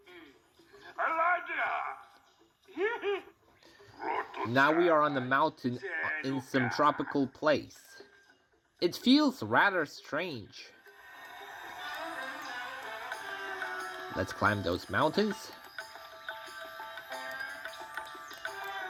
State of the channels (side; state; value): both; identical; correlation 1.00